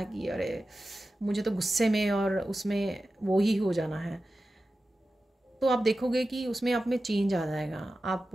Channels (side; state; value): both; normal; correlation 0.93